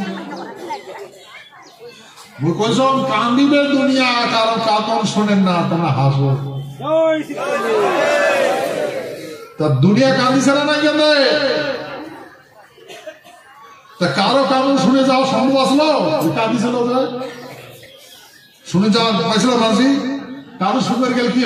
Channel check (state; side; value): identical; both; correlation 1.00